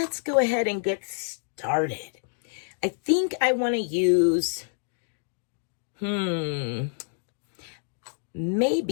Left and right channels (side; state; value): right; silent; digital silence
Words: go ahead and get started. I think I want to use